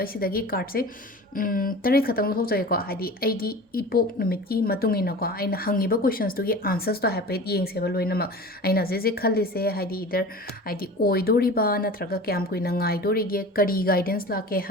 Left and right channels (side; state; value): both; normal; correlation 0.37